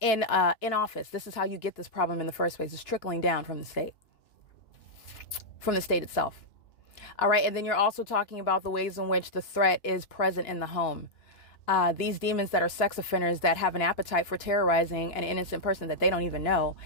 office. This is how you get this problem in the first place. It's trickling down from the state itself. All right. And then you're also talking about the ways in which the threat is present in the home. These demons that are sex offenders that have an appetite for terrorizing an innocent person that they don't even know,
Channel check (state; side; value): late; right; 2.9 ms